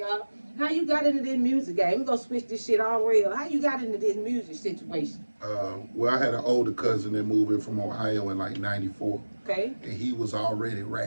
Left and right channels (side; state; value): both; inverted; correlation -1.00